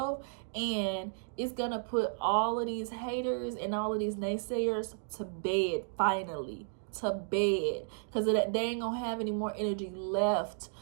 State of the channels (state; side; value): silent; left; digital silence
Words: And it's going to put all of these haters and all of these naysayers to bed, finally. To bed. Because they ain't going to have any more energy left